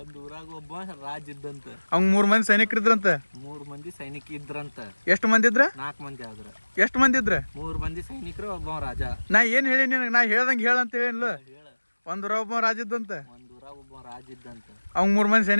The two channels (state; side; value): inverted; both; correlation -1.00